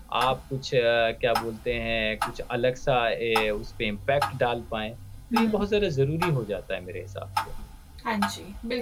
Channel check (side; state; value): both; identical; correlation 1.00